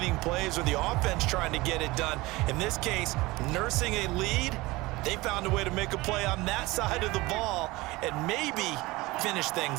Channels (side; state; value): left; quieter; 21.1 dB